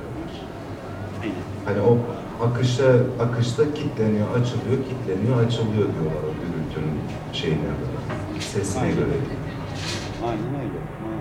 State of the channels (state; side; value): identical; both; correlation 1.00